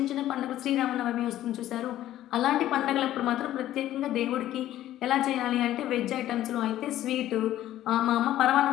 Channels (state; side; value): quieter; right; 13.3 dB